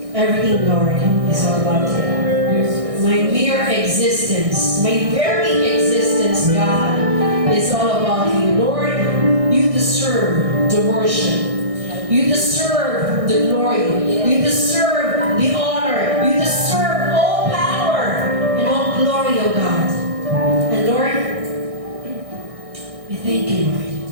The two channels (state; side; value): late; left; 1.6 ms